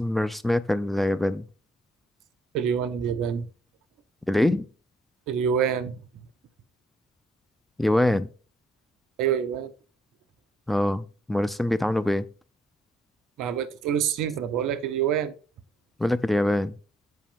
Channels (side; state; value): both; normal; correlation 0.70